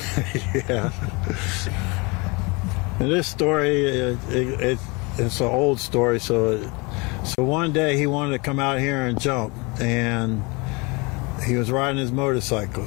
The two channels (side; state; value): right; quieter; 27.7 dB